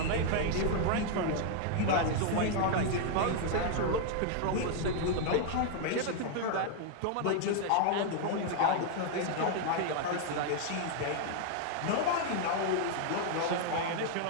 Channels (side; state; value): both; different; correlation 0.00